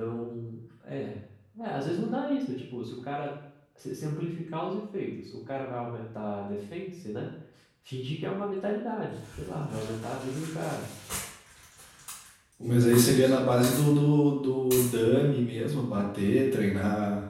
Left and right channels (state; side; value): identical; both; correlation 1.00